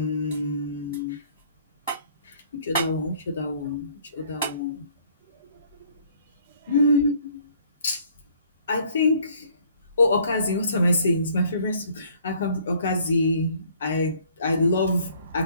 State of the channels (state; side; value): inverted; both; correlation -0.59